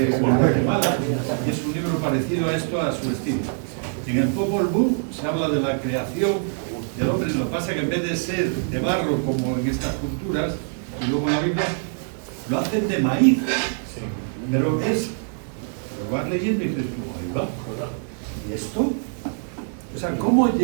Guatemala, y es un libro parecido a esto, a su estilo. En el Popol Vuh se habla de la creación del hombre, lo que pasa que en vez de ser de barro como en estas culturas, y luego en la Biblia, lo hacen de maíz. Pero es, lo vas leyendo y dices, ahí va, ¿y esto? O sea, ¿cómo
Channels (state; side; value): silent; left; 59 dB below the other